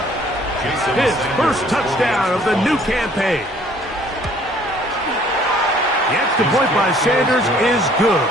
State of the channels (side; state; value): both; normal; correlation 0.58